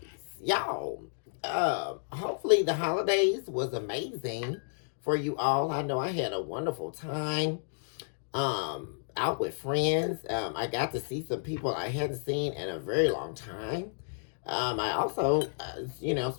Y'all, hopefully the holidays was amazing for you all. I know I had a wonderful time out with friends. I got to see some people I hadn't seen in a very long time. I also,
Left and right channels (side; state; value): right; silent; digital silence